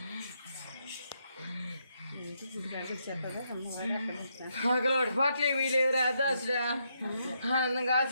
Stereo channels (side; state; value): both; inverted; correlation -0.78